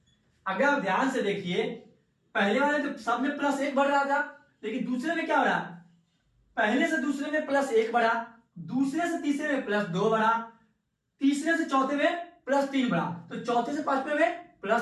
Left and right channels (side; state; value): both; identical; correlation 1.00